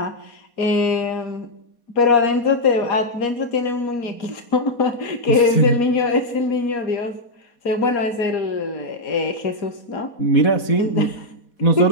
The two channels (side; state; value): right; late; 4.2 ms